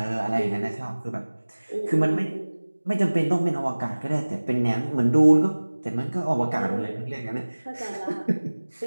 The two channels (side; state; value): both; inverted; correlation -1.00